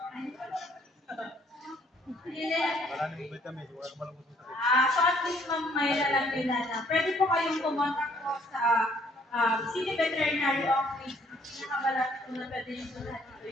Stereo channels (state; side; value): normal; both; correlation 0.63